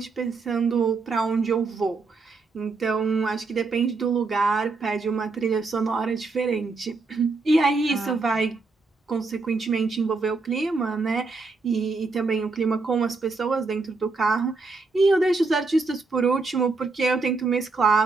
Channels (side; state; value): left; quieter; 3.9 dB